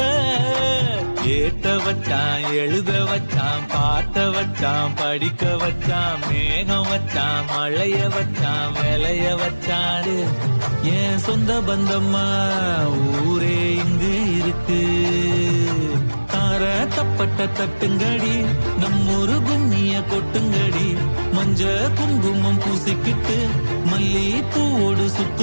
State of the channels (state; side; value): inverted; both; correlation -1.00